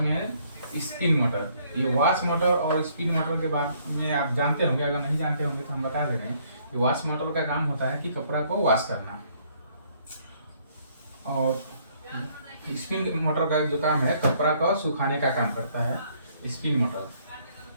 में है स्पिन मोटर। ये वॉश मोटर और स्पिन मोटर के बाद में आप जानते होंगे, अगर नहीं जानते होंगे तो हम बता दे रहे हैं कि वॉश मोटर का काम होता है कि कपड़ा को वॉश करना, और स्पिन मोटर का जो काम है कपड़ा को सुखाने का काम करता है स्पिन मोटर।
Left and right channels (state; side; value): inverted; both; correlation -0.65